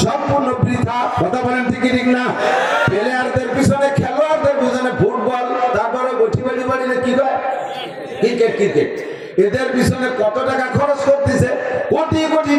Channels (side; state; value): both; identical; correlation 1.00